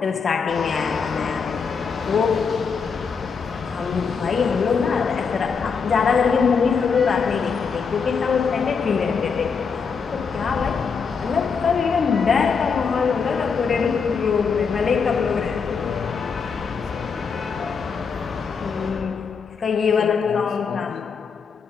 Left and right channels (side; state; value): right; quieter; 5.7 dB